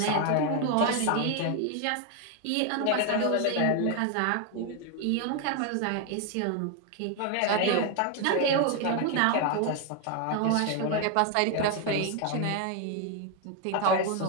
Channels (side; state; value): both; different; correlation 0.01